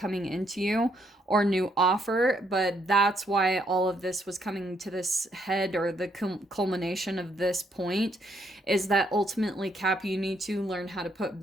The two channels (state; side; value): normal; both; correlation 0.72